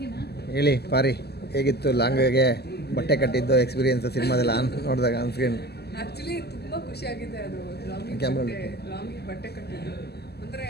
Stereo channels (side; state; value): right; late; 0.47 ms